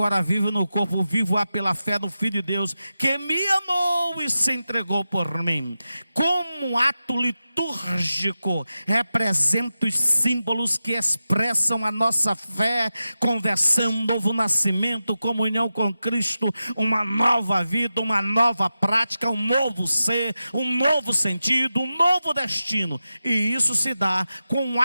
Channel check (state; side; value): inverted; both; correlation -0.93